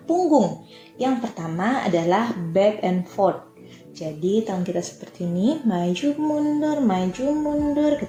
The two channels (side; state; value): both; identical; correlation 1.00